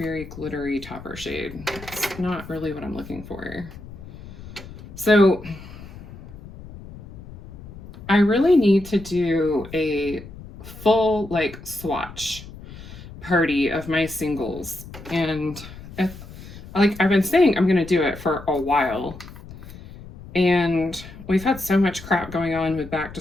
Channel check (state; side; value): noise; left; rumble, 16 dB below the sound